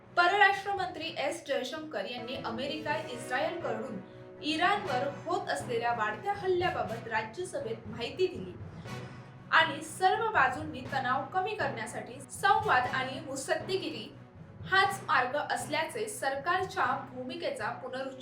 परराष्ट्र मंत्री एस जयशंकर यांनी अमेरिका इस्रायलकडून इराणवर होत असलेल्या वाढत्या हल्ल्याबाबत राज्यसभेत माहिती दिली आणि सर्व बाजूंनी तणाव कमी करण्यासाठी संवाद आणि मुत्सद्देगिरी हाच मार्ग असल्याचे सरकारच्या भूमिकेचा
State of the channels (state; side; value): identical; both; correlation 1.00